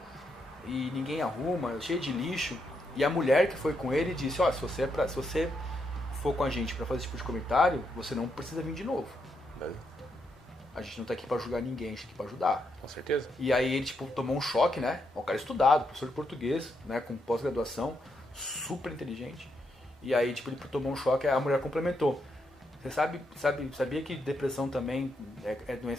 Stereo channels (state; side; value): normal; both; correlation 0.80